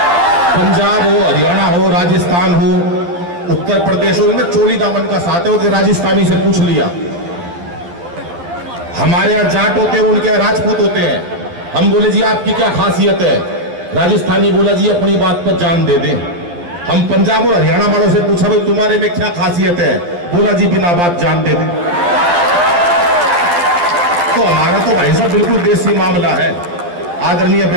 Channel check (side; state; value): left; late; 12 ms